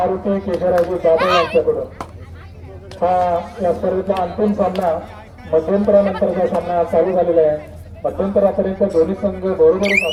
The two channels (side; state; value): both; identical; correlation 1.00